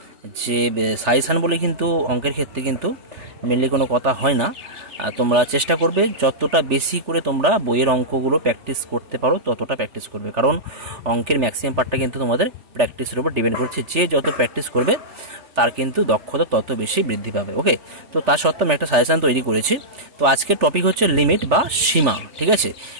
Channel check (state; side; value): late; left; 3.4 ms